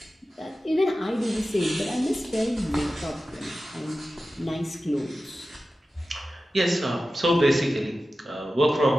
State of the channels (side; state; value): both; normal; correlation 0.94